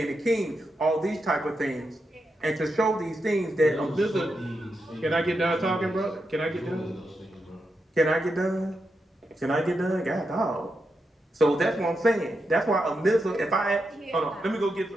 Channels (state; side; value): normal; both; correlation 0.86